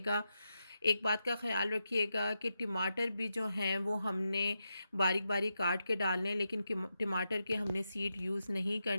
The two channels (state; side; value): inverted; both; correlation -0.87